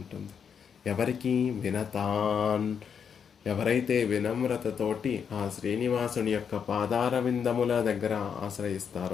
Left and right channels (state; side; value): quieter; right; 7.1 dB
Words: ఎవరికి? వినతాన్. ఎవరైతే వినమ్రతతోటి ఆ శ్రీనివాసుని యొక్క పాదార విందముల దగ్గర